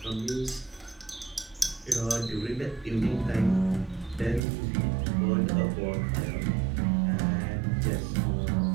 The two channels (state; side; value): drops out; left; at 4.4 s